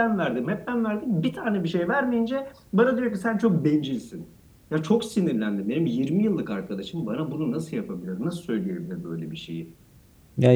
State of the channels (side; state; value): both; identical; correlation 1.00